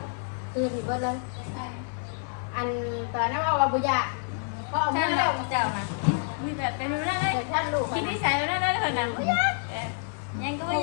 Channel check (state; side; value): silent; right; digital silence